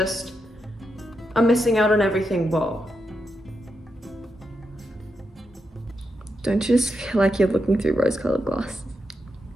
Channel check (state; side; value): normal; both; correlation 0.85